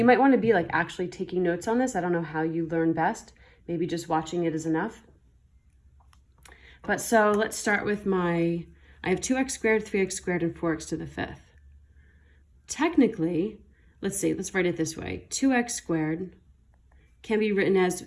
might want to be like actually taking notes on this. I don't know how you learn best. Maybe just watching it is enough. But so let's start with I have 2x squared, 3x squared, and 4x to the 5th. Technically, let's write it this way. 2x squared can be written as,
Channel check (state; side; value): identical; both; correlation 1.00